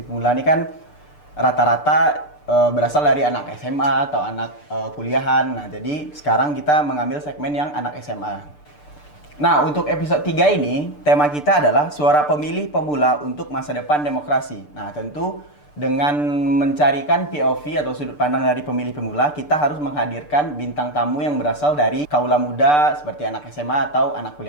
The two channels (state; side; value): late; right; 6.8 ms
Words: pemula ini kan rata-rata berasal dari anak SMA atau anak kuliahan. Nah, jadi sekarang kita mengambil segmen yang anak SMA. Nah, untuk episode 3 ini, tema kita adalah suara pemilih pemula untuk masa depan demokrasi. Nah, tentu dengan mencarikan POV atau sudut pandang dari pemilih pemula, kita harus menghadirkan bintang tamu yang berasal dari kaula muda seperti anak SMA atau anak